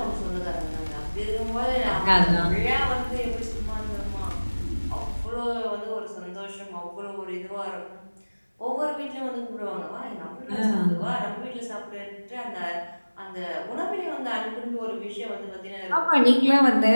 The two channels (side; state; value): both; inverted; correlation -1.00